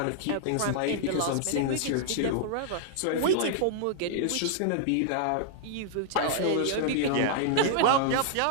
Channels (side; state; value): both; different; correlation -0.01